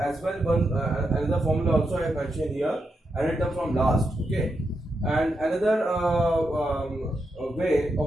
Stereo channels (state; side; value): normal; both; correlation 0.84